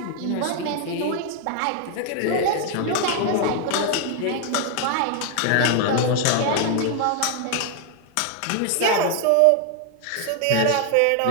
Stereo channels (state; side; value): different; both; correlation 0.00